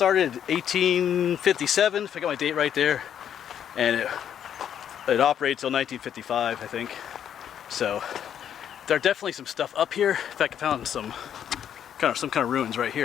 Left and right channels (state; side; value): quieter; right; 9.3 dB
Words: in 1857, if I got my date right there, and it operated till 1955, I think. So there are definitely some stuff up here. In fact, I found some kind of ruins right